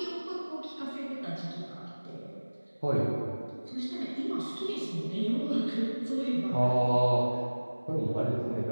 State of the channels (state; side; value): inverted; both; correlation -1.00